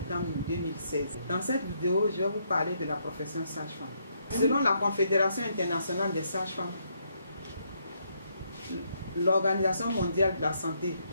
2016. Dans cette vidéo, je vais vous parler de la profession sage-femme. Selon la Confédération internationale des sages-femmes, l'Organisation mondiale de la santé,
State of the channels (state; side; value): inverted; both; correlation -0.74